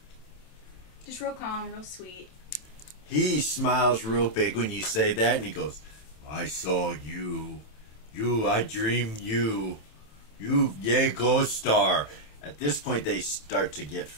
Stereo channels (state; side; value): late; right; 27 ms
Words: Just real calm, real sweet. He smiles real big when you say that, and he goes, "I saw you. I dreamed you. Yay, Ghost Star." At this point, they start to get